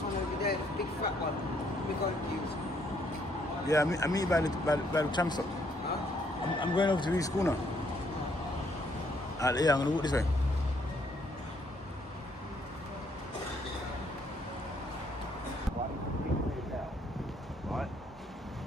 one over there, the big fat one. We're going to use. Yeah, I mean by the tram stop. Huh? I'm going over to the school now. Yeah, I'm gonna walk this way. Right?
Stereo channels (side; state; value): both; normal; correlation 0.69